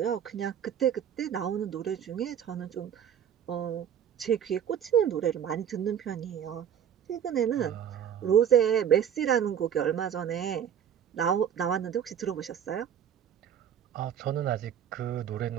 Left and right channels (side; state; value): left; quieter; 8.9 dB